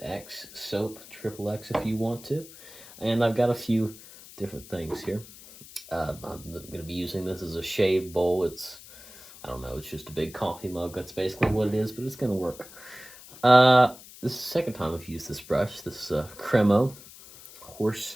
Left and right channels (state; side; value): noise; left; hiss, 18 dB below the sound